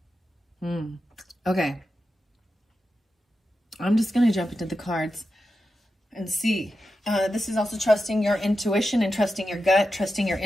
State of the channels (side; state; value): both; normal; correlation 0.90